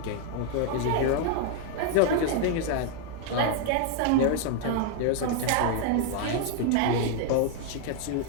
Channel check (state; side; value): different; both; correlation 0.00